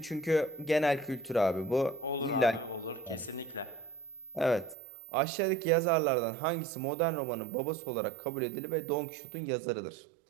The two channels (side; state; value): left; drops out; at 4.8 s